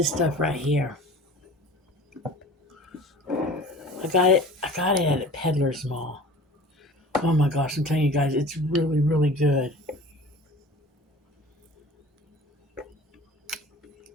stuff right here. I got it at a Peddler's Mall. Oh my gosh, I'm telling you guys, it's really, really good.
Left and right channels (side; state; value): both; normal; correlation 0.43